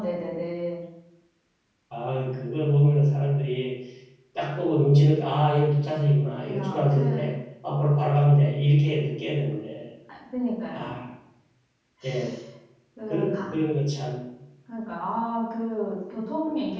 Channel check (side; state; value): both; identical; correlation 1.00